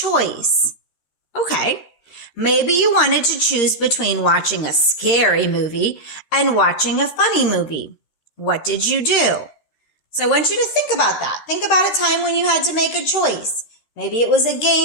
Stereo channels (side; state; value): right; late; 13 ms